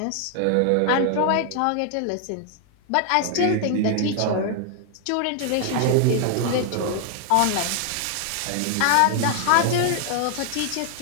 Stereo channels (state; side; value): different; both; correlation 0.00